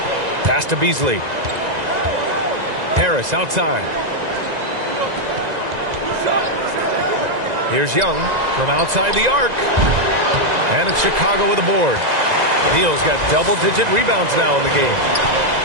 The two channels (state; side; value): late; left; 2.0 ms